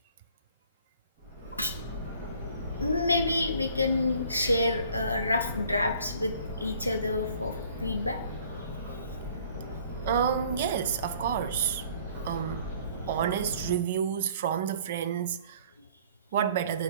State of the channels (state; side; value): inverted; both; correlation -0.55